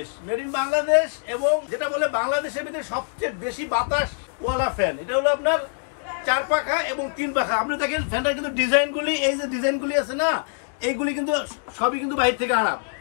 এবং যেটা বলে বাংলাদেশের ভিতরে সবচেয়ে বেশি বাতাস ওয়ালা ফ্যান। এটা হলো আপনার 4 পাখা এবং 3 পাখা। আপনি দেখেন ফ্যানটার কিন্তু ডিজাইনগুলি, এই যে ডিজাইনগুলি আছে না, এইগুলি কিন্তু সবই কিন্তু বাইরে থেকে আনা,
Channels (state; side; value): silent; right; digital silence